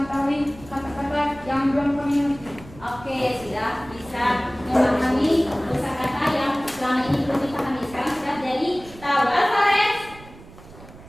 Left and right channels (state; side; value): noise; right; rumble, 19 dB below the sound